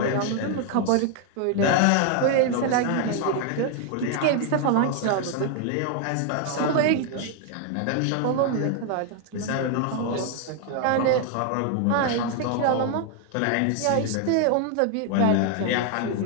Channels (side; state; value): both; different; correlation 0.00